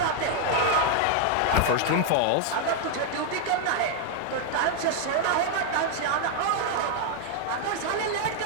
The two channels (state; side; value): different; both; correlation 0.00